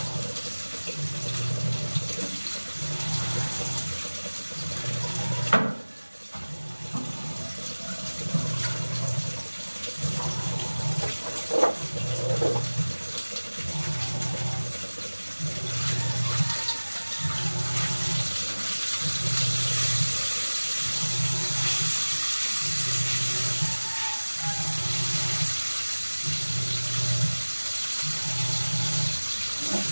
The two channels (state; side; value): inverted; both; correlation -1.00